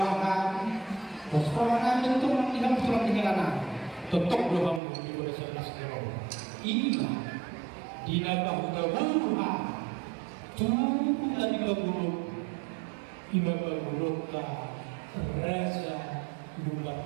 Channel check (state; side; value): drops out; left; at 4.8 s